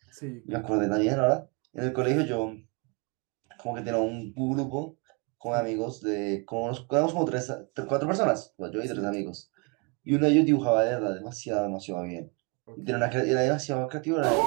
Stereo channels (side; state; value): left; quieter; 32.3 dB